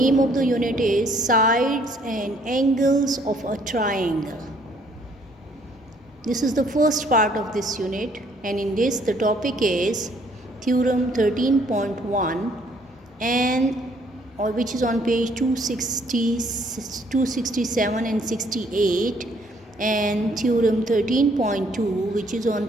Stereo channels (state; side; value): normal; both; correlation 0.64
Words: of the unit is Sides and Angles of a Triangle. This is the first part of this unit, and in this the topic is Theorem 13.1 which is on page 267 and 68, and Theorem 13.2 which is on